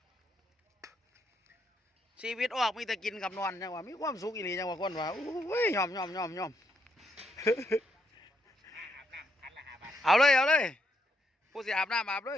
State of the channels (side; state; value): both; normal; correlation 0.77